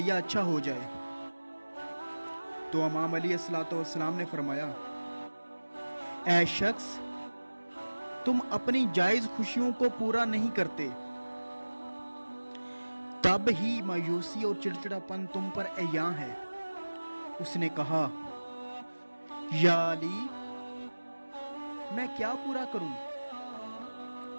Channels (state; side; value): inverted; both; correlation -1.00